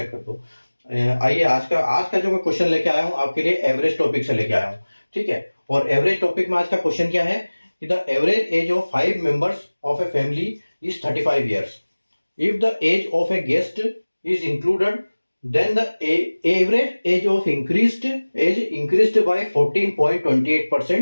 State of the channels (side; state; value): both; inverted; correlation -1.00